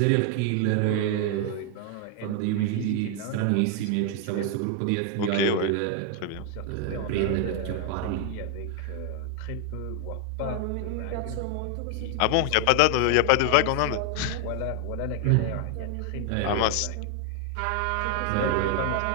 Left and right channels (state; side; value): different; both; correlation 0.00